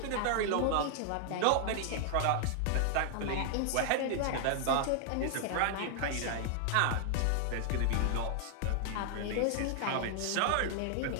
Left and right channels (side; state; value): both; different; correlation 0.00